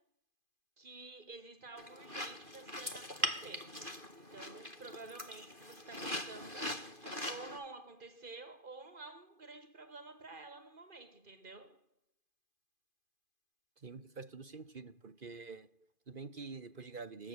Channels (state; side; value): late; left; 2.5 ms